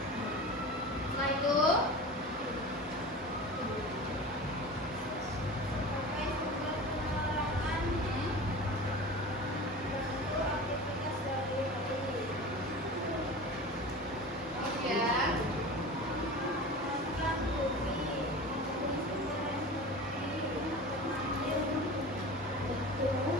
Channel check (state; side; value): normal; both; correlation 0.33